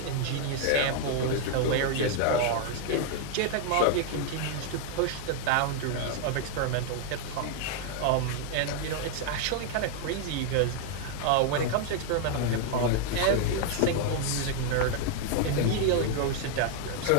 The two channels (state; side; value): different; both; correlation 0.00